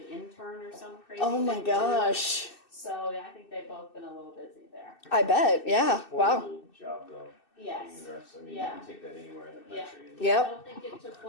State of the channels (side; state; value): right; late; 2.6 ms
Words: intern or some crazy. Oh my thing too. gosh. So yeah, I think they've both been a little busy there. I bet. Yeah. Poor Wow. little job though. Yes. being a nurse. I mean, you Yeah. can take that anywhere in the Yeah. country. And- I Yep. don't think it took,